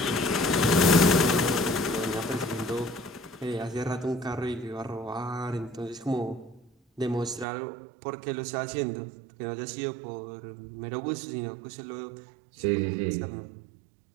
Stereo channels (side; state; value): left; drops out; at 7.5 s